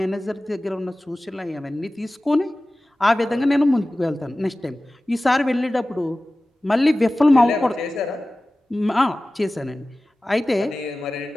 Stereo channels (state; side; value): normal; both; correlation 0.97